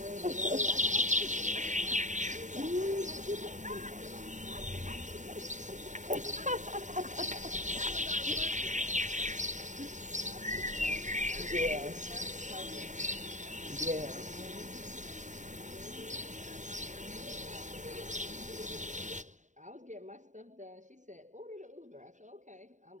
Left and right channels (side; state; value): left; late; 0.36 ms